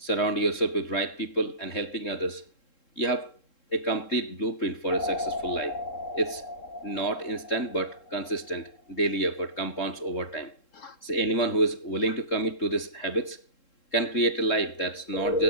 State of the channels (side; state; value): right; late; 3.7 ms